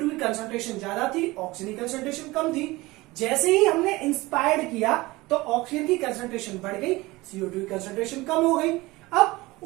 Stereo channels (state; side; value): quieter; left; 20.7 dB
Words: की कंसंट्रेशन ज्यादा थी, ऑक्सीजन की कंसंट्रेशन कम थी। जैसे ही हमने इंस्पायर्ड किया तो ऑक्सीजन की कंसंट्रेशन बढ़ गई, CO2 की कंसंट्रेशन कम हो गई। अब